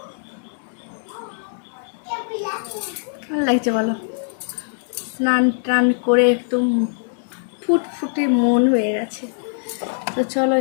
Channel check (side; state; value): right; silent; digital silence